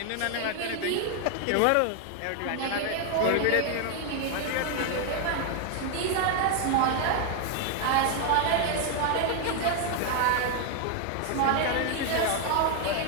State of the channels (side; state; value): both; different; correlation 0.00